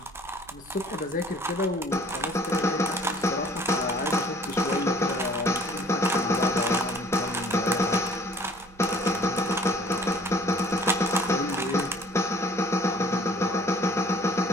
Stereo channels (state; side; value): noise; right; hum, 24 dB below the sound